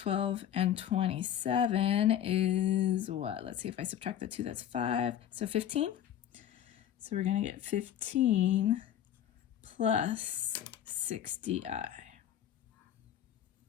and 27 is what? Let's see if I subtract the 2, that's 5. So 15. So we're going to get 15 plus 60i.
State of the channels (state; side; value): quieter; right; 10.6 dB